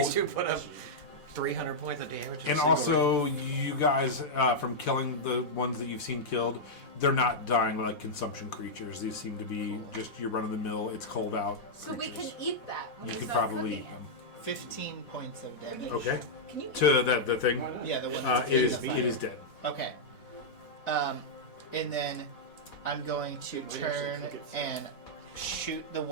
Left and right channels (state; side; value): late; right; 4.1 ms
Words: two put up 300 points of damage. in a and single also, you guys, from killing the ones that you've seen killed, they're not dying like consumption creatures. These seem to be just your run-of-the-mill, it's cold out So we creatures. can eat that. When You we could start probably cooking eat them. 15 points of damage. Okay. Can you? To the thing, Yeah, the one that's it in is the it fire. is dead. Okay. And then I'm going to turn and shoot the